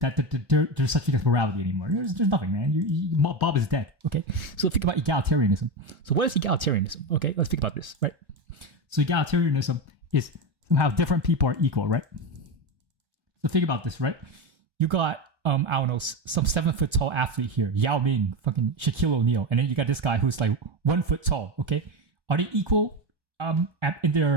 there's such thing as morality anymore. There's nothing, man. Bob is dead. Okay, so think about egalitarianism. So what is egalitarianism? Okay, let's think about this, right? So egalitarianism is somehow different people are equal, right? So think about this, right? You got I don't know, some 7 foot tall athlete here, Yao Ming, fucking Shaquille O'Neal, and then you got this guy who's like 1 foot tall. Okay, are they equal in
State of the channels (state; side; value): late; left; 1.2 ms